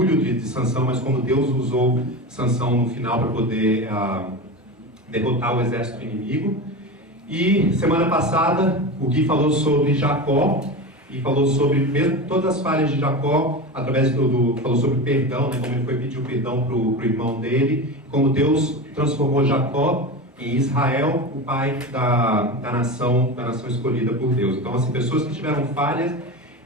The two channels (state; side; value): normal; both; correlation 0.25